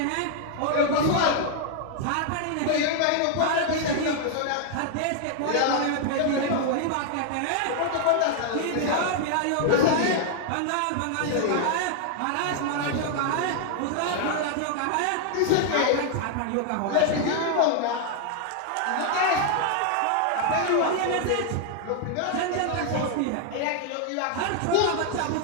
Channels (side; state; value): both; different; correlation 0.00